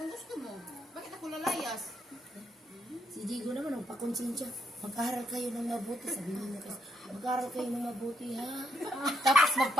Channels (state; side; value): normal; both; correlation 0.77